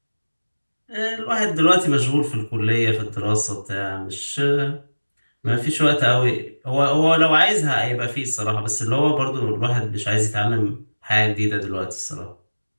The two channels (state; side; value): inverted; both; correlation -1.00